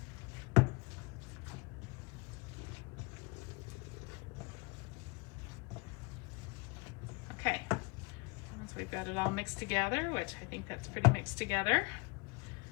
Okay, once we've got it all mixed together, which I think that's pretty mixed together,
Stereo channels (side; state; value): right; quieter; 28.2 dB